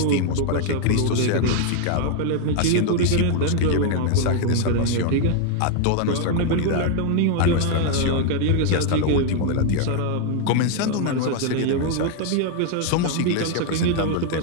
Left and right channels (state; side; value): different; both; correlation 0.00